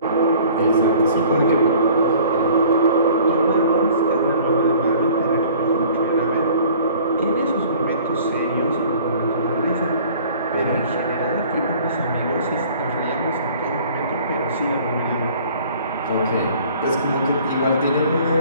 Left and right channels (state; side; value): inverted; both; correlation -0.50